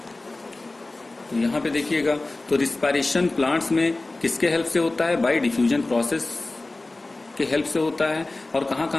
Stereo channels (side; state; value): right; quieter; 3.1 dB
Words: तो यहां पे देखिएगा, तो रिस्पायरेशन प्लांट्स में किसके हेल्प से होता है, बाय डिफ्यूजन प्रोसेस के हेल्प से होता है। और कहां